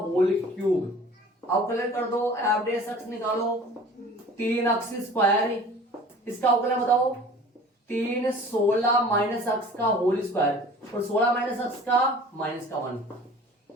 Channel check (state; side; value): normal; both; correlation 0.45